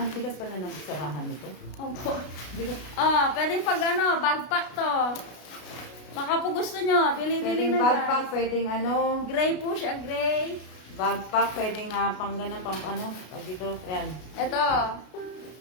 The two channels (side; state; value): right; late; 33 ms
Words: bigas pala ng sarahan nito. Opo. Pwedeng pag ano, bagpak to. Baka po gusto nyo, bili-bili Pwedeng na backpack, guys. pwedeng ano, Gray po siya, gray. backpack, pwedeng pang gano'n, pang ano, pag dito, yan. Ito.